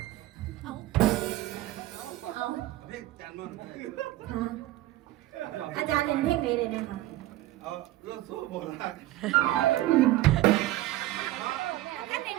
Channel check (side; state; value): left; quieter; 15.8 dB